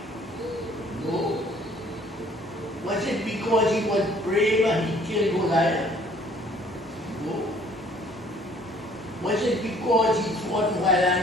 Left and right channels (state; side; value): normal; both; correlation 0.57